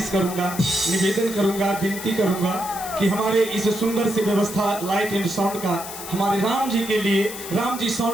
करूंगा, निवेदन करूंगा, विनती करूंगा कि हमारे इस सुंदर सी व्यवस्था लाइट एंड साउंड का हमारे राम जी के लिए, राम जी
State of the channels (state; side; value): noise; left; hiss, 10 dB below the sound